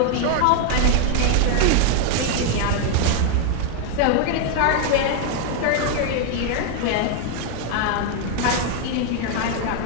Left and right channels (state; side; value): different; both; correlation 0.00